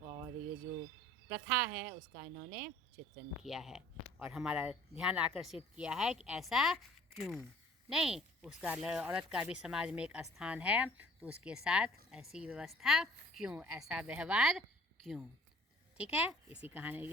और ये जो प्रथा है उसका इन्होंने चित्रण किया है और हमारा ध्यान आकर्षित किया है कि ऐसा क्यों नहीं, उसका औरत का भी समाज में एक स्थान है, तो उसके साथ ऐसी व्यवस्था क्यों, ऐसा व्यवहार क्यों। ठीक है,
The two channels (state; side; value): normal; both; correlation 0.53